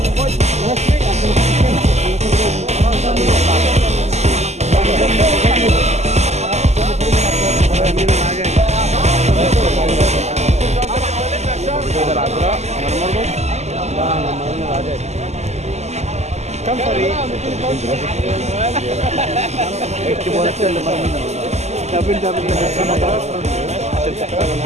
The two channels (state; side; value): late; left; 0.33 ms